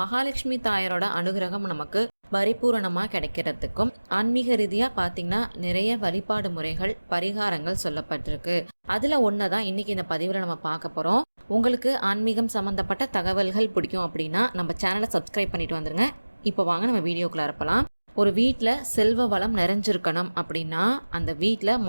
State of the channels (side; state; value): both; inverted; correlation -1.00